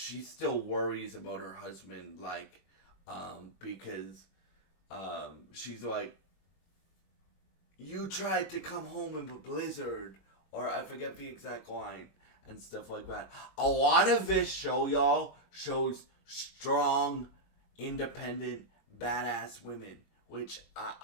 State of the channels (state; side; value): late; right; 21 ms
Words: worries about her husband, like, because she's like, you tried to come home in a blizzard, or I forget the exact line and stuff like that. A lot of this show, y'all, shows strong, independent, badass women, which